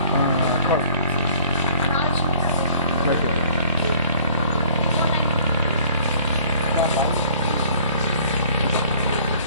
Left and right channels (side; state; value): both; inverted; correlation -0.53